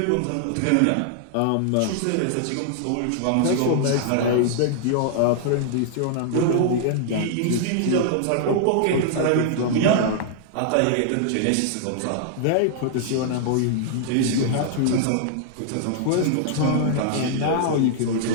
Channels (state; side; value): different; both; correlation -0.01